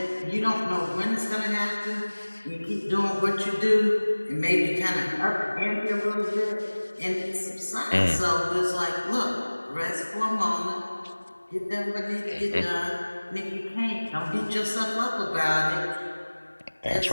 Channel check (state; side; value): inverted; both; correlation -1.00